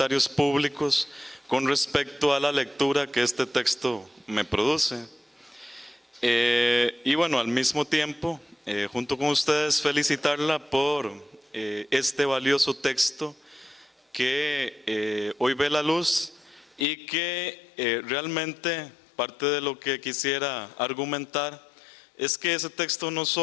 públicos con respecto a la lectura que este texto me produce. Y bueno, al mismo tiempo, junto con ustedes, felicitarla por este valioso texto que hoy ve la luz y que realmente parte de lo que quisiera argumentar es que ese texto no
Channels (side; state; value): right; drops out; at 16.9 s